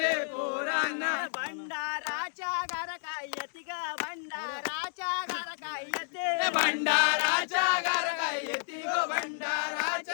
पोराना, भंडाराच्या घर काय येते ग, भंडाराच्या घर काय येते, भंडाराच्या घर काय येते गो,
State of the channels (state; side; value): silent; right; 57 dB below the other